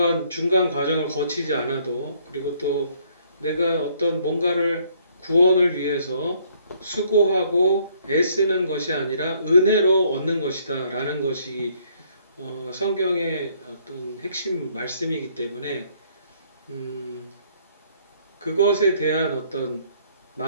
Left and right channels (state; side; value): inverted; both; correlation -0.65